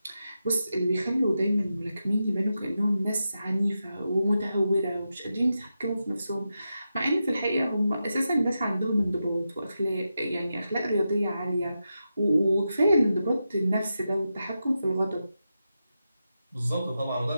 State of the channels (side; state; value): both; inverted; correlation -0.89